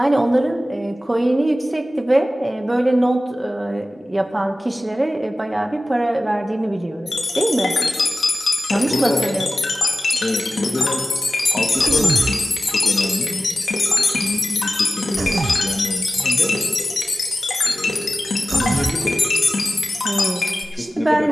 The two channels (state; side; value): normal; both; correlation 0.95